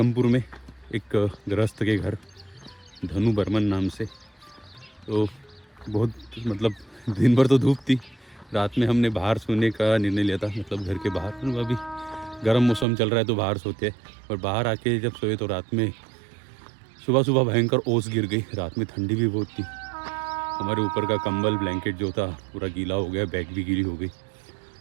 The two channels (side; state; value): left; drops out; at 12.9 s